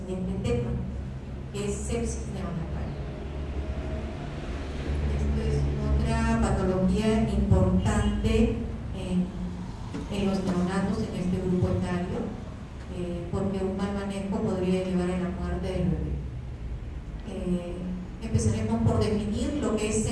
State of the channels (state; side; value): identical; both; correlation 1.00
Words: tema, que es sepsis neonatal. Esto es otra patología importante en los neonatos en este grupo etario, porque un mal manejo podría llevar a la muerte del bebé. Empezaremos por definir lo que es